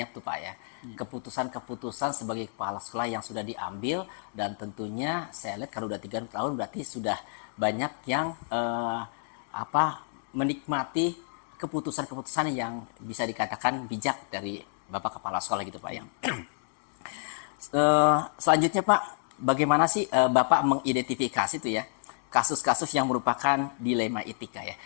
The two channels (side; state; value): right; silent; digital silence